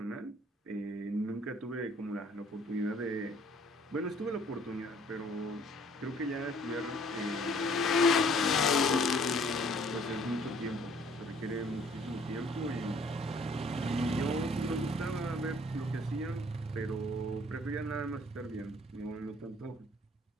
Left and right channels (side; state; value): both; normal; correlation 0.58